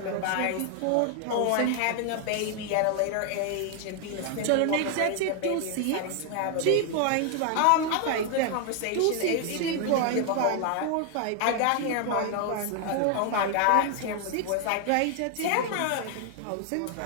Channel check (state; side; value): different; both; correlation 0.00